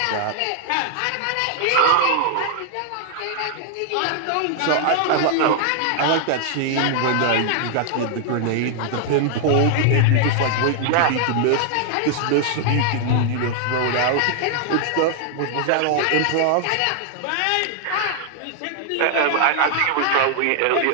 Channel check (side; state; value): both; different; correlation 0.00